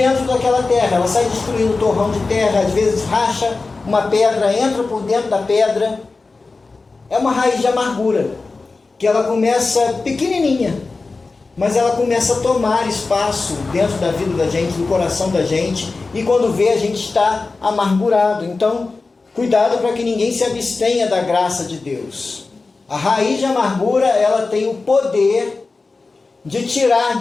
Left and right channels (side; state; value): right; quieter; 3.8 dB